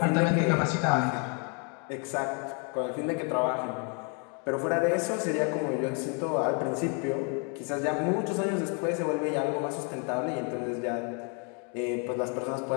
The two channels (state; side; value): quieter; right; 37.5 dB